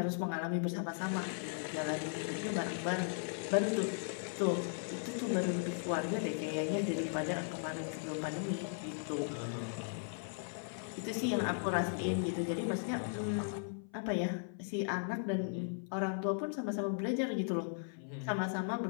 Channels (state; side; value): silent; right; 53 dB below the other